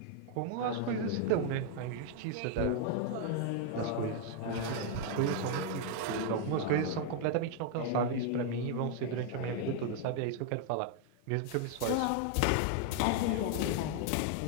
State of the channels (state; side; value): different; both; correlation 0.00